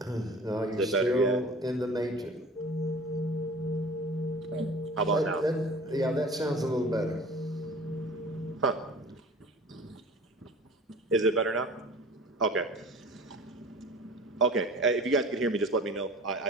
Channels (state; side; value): normal; both; correlation 0.42